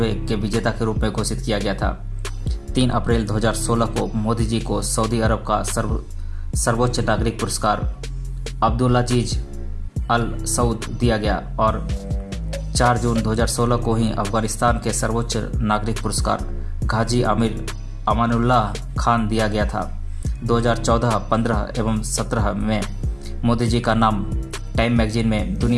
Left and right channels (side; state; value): both; identical; correlation 1.00